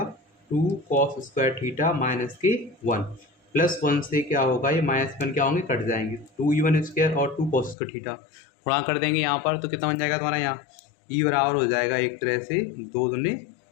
2 cos स्क्वायर थीटा माइनस के 1 प्लस 1 से क्या होगा, ये माइनस 1 क्या होंगे, कट जाएंगे, 2E1 स्क्वायर और 2 cos स्क्वायर थीटा गुणा कर देंगे यहाँ पर, तो कितना बन जाएगा तुम्हारा यहाँ ई बराबर हो जाएगा एक तरह से 2 दूनी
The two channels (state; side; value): drops out; right; at 7.8 s